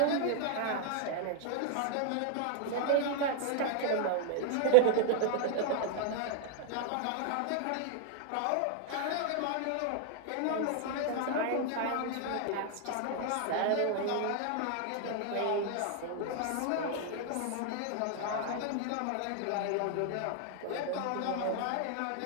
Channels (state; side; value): different; both; correlation 0.00